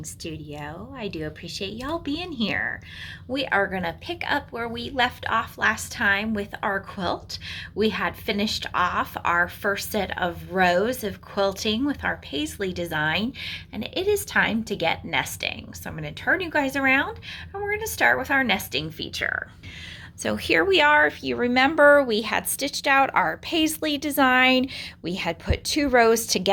studio. I do appreciate y'all being here. We are going to pick up where we left off last time with our quilt. We had finished off our first set of rows of quilting with our paisley design, and it is time to get nesting. So I'm going to turn you guys around, and we're going to start with our nesting feature. So here we are. If you remember, we had stitched out our paisley design. We had put 2 rows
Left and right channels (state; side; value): identical; both; correlation 1.00